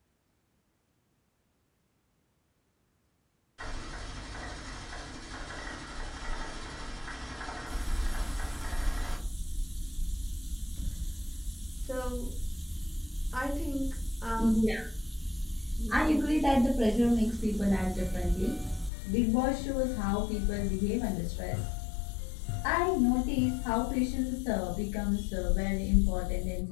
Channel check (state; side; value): drops out; right; at 18.9 s